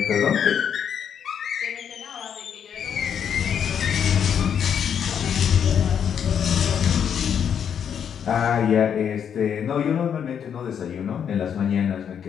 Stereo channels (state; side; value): quieter; right; 8.1 dB